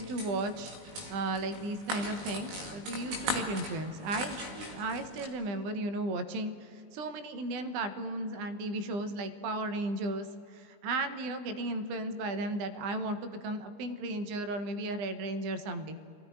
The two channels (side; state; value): left; late; 19 ms